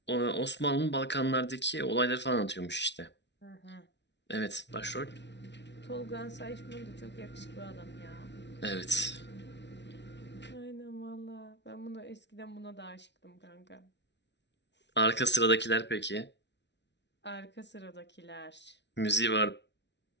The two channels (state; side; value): late; right; 0.51 ms